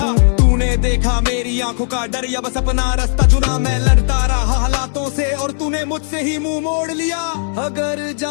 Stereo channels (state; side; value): silent; right; digital silence